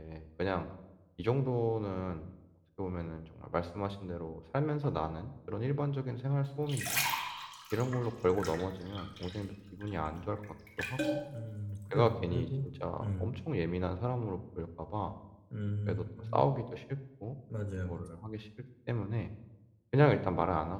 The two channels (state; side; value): identical; both; correlation 1.00